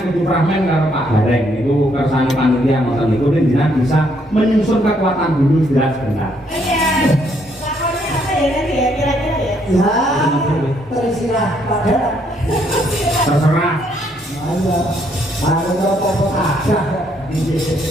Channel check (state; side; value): normal; both; correlation 0.70